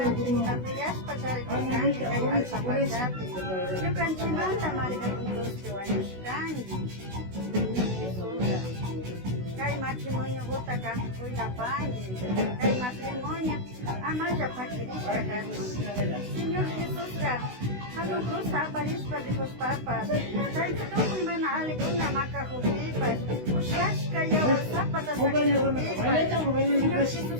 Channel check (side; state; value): left; late; 16 ms